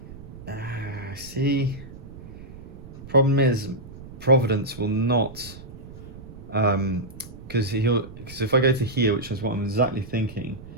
See. Problem is, Providence will not, because if I go to here, which is what I'm exactly thinking,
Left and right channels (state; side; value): noise; right; rumble, 15 dB below the sound